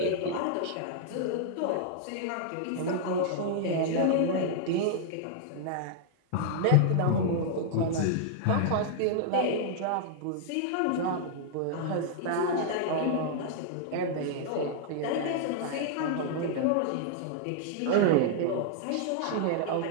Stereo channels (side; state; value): both; different; correlation -0.01